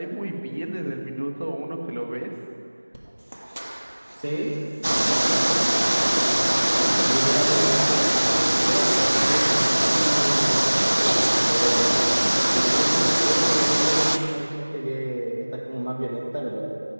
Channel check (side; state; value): both; inverted; correlation -1.00